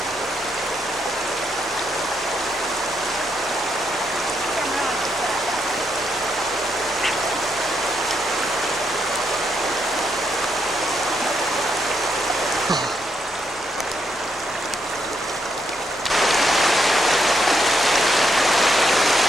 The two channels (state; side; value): normal; both; correlation 0.78